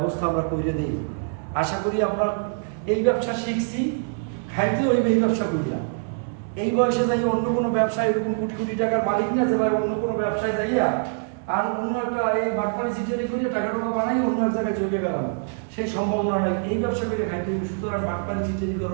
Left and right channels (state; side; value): silent; left; digital silence